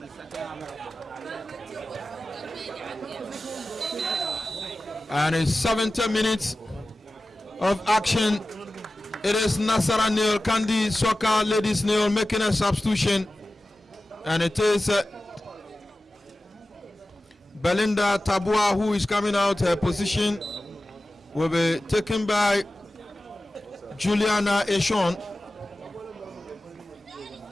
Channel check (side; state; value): both; normal; correlation 0.95